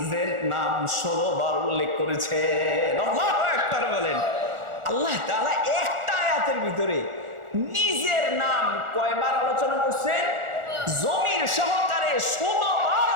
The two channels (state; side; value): late; left; 1.4 ms